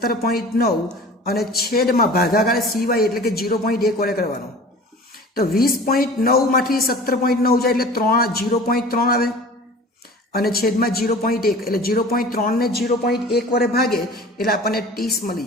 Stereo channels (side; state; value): both; normal; correlation 0.42